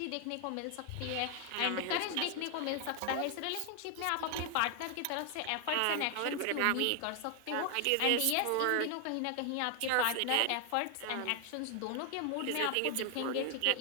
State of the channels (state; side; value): different; both; correlation 0.00